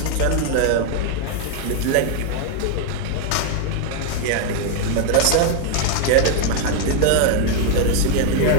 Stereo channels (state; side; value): different; both; correlation 0.00